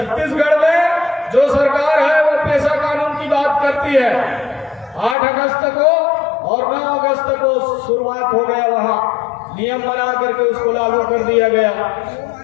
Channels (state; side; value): drops out; right; at 5.2 s